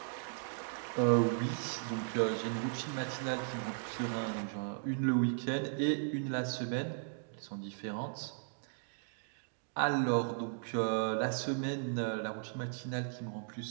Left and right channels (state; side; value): silent; left; digital silence